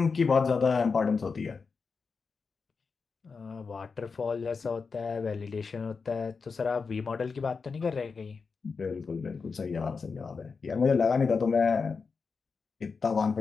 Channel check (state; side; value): quieter; right; 5.0 dB